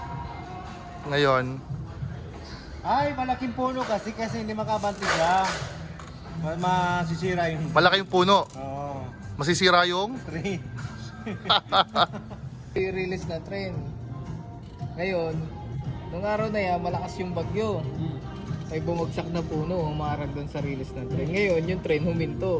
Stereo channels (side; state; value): both; identical; correlation 1.00